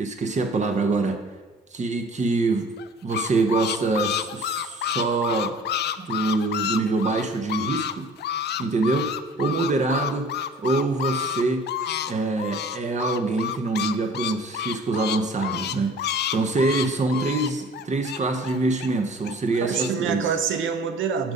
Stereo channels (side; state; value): both; normal; correlation 0.48